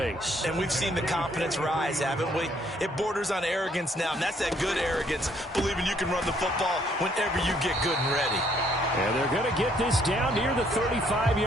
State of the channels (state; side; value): normal; both; correlation 0.66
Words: And we've seen the confidence rise, haven't we? It borders on arrogance now, and that's that good arrogance, believing you can run the football whenever you get good and ready. And they're going to get this down near the